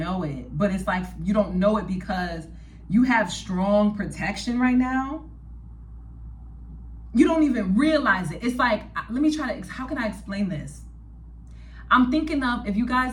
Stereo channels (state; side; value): identical; both; correlation 1.00